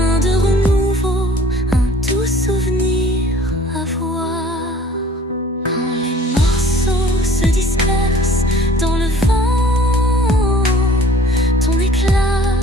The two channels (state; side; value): normal; both; correlation 0.51